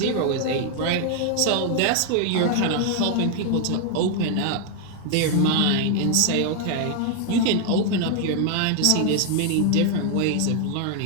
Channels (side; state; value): both; different; correlation 0.00